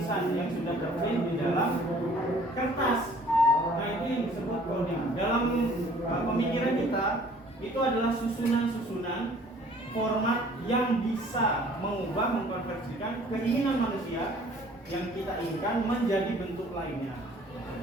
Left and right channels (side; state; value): both; normal; correlation 0.54